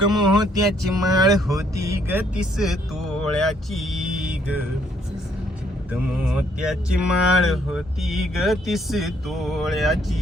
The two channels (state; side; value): normal; both; correlation 0.68